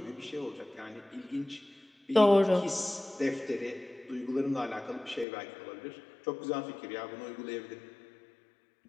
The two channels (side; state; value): right; drops out; at 5.2 s